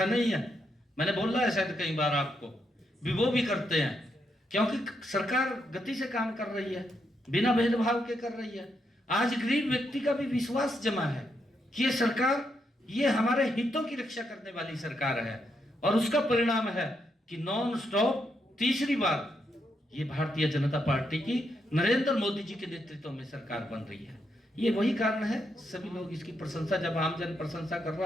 नहीं है, मैंने बोला है शायद कई बार आपको भी, वो भी करते हैं, क्योंकि सरकार गति से काम कर रही है, बिना भेदभाव के कर रही है। आज गरीब व्यक्ति का भी विश्वास जमा है कि ये सरकार, ये हमारे हितों की रक्षा करने वाली सरकार है, और उसका परिणाम है कि नॉन स्टॉप तीसरी बार ये भारतीय जनता पार्टी की नरेंद्र मोदी जी के नेतृत्व में सरकार बन रही है। ये वही कारण है, सभी लोग इसकी प्रशंसा, जब आमजन प्रशंसा कर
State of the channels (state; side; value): normal; both; correlation 0.80